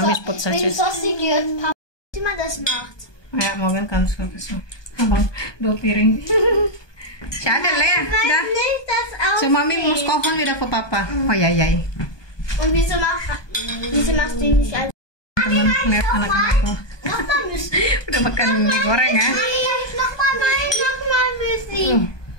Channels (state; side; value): late; right; 1.2 ms